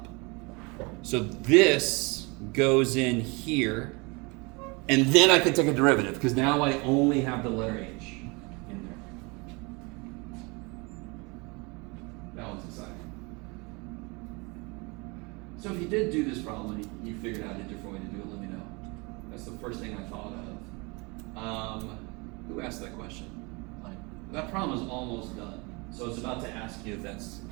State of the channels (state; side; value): quieter; left; 28.2 dB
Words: So this goes in here, and then I could take a derivative, because now I only have the letter h in there. That one's exciting. So if you did do this problem and you figured out a different way to do it, let me know. That's the first thing I thought of. Who asked that question? That problem is almost done. So it's about to ask you if that's